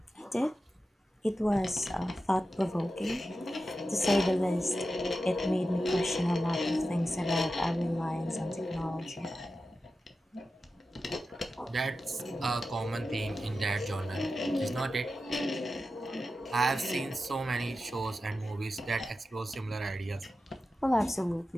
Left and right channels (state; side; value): normal; both; correlation 0.92